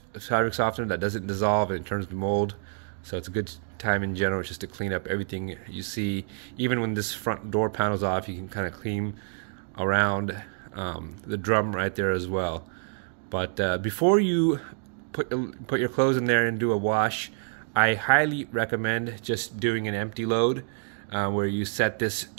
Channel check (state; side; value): silent; left; digital silence